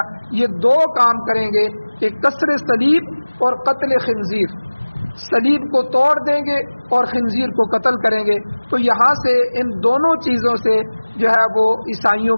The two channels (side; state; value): both; inverted; correlation -1.00